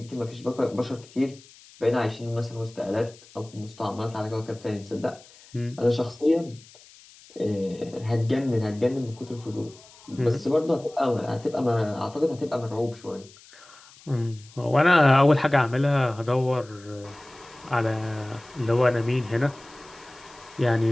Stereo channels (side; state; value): left; noise; hiss, 24 dB below the sound